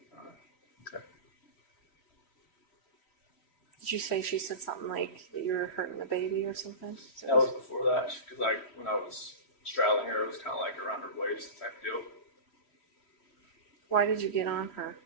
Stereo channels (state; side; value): late; right; 3.1 ms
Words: on her. Okay. Did you say she said something like that you were hurting the baby or something? That was before that, because when I was straddling her, it was kind of like around her waist type deal. Why did you get on her